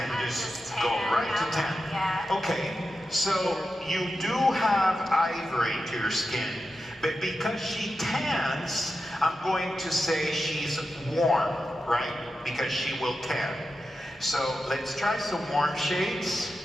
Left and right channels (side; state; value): both; normal; correlation 0.90